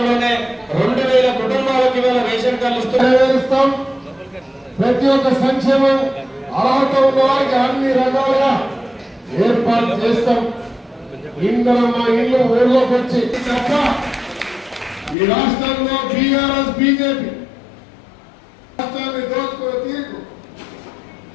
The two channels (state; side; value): drops out; right; at 15.2 s